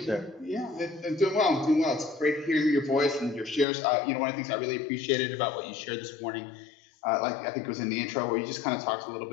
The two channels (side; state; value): right; drops out; at 3.7 s